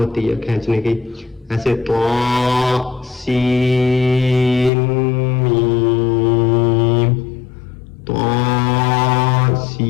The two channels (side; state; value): right; drops out; at 4.7 s